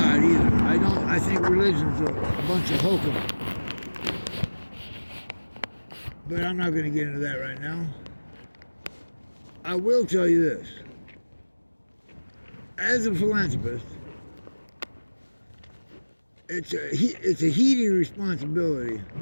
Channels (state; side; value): inverted; both; correlation -1.00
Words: either. I think religion's a bunch of hokum. But I'm not going to get into that right now. I will tell you this. As a philanthropist, it's a heedy responsibility